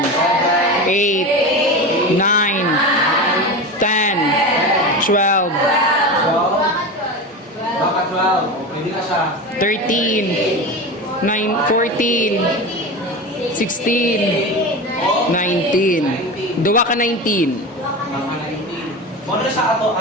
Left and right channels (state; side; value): normal; both; correlation 0.25